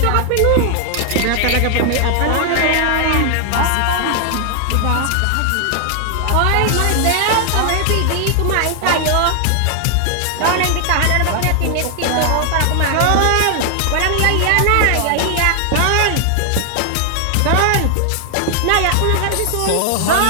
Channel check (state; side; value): different; both; correlation 0.00